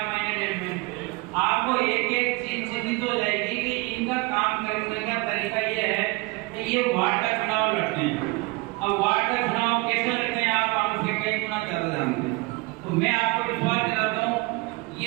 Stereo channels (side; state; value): left; quieter; 23.8 dB